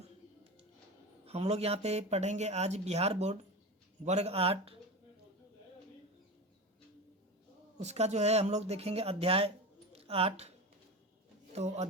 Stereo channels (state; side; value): normal; both; correlation 0.25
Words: हम लोग यहाँ पे पढ़ेंगे आज बिहार बोर्ड वर्ग 8। उसका जो है हम लोग देखेंगे अध्याय 8। तो